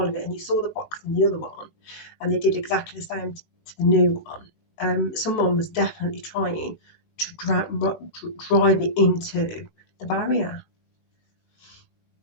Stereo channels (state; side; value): late; right; 19 ms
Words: of it, and you saw the box in the other one, and they did exactly the same to the new one. Someone was definitely trying to drive it into the barrier.